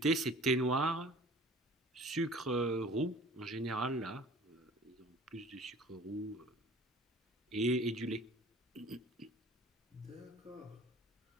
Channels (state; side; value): normal; both; correlation 0.46